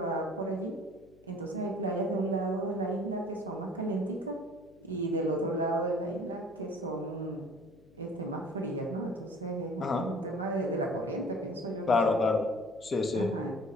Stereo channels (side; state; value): left; noise; hum, 26 dB below the sound